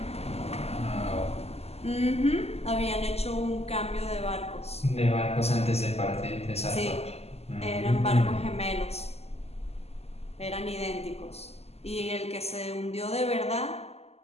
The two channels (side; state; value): right; late; 0.30 ms